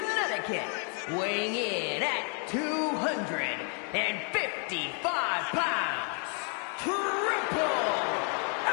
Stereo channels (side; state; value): right; quieter; 39.9 dB